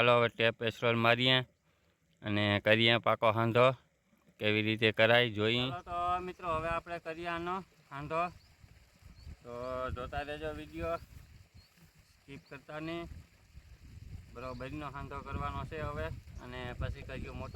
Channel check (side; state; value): both; identical; correlation 1.00